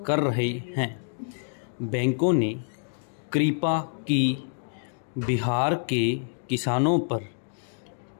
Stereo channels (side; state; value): right; silent; digital silence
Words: कर रहे हैं। बैंकों ने कृपा की बिहार के किसानों पर